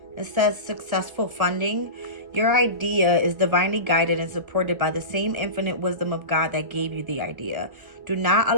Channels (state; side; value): late; left; 1.7 ms